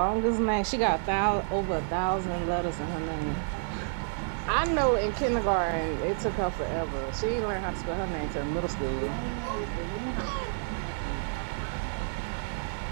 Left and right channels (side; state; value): left; silent; digital silence